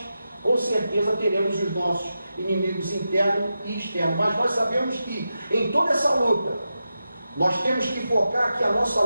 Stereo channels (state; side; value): inverted; both; correlation -0.90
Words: com certeza, teremos os nossos inimigos internos e externos. Mas nós sabemos que em toda essa luta, nós temos que focar que a nossa